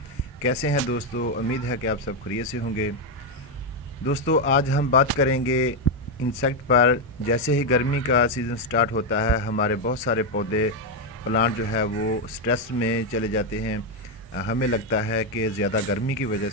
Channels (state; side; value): normal; both; correlation 0.04